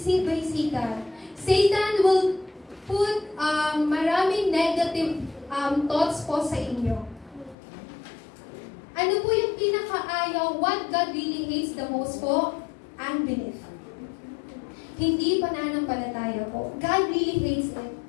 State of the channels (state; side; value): drops out; right; at 7.6 s